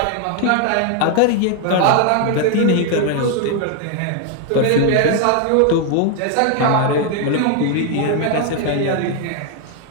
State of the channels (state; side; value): different; both; correlation 0.01